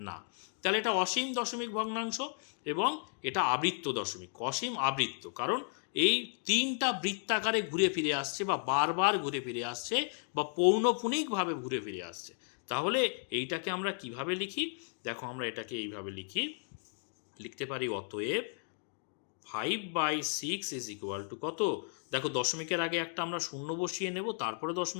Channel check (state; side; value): silent; right; 55 dB below the other